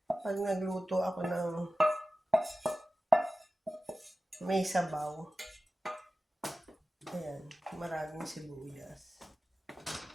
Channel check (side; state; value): both; normal; correlation 0.94